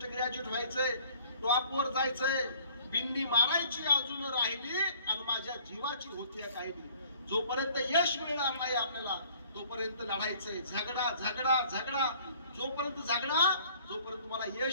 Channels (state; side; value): inverted; both; correlation -0.54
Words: ग्रॅज्युएट व्हायचंय, टॉपवर जायचंय. बिंदी मारायची अजून राहिली आणि माझ्या जीवाची होती काही. जोपर्यंत यश मिळणार नाही आपल्याला तोपर्यंत लढायचंय. झगडा झगडा झगडा, जोपर्यंत झगडा जोपर्यंत तुम्हाला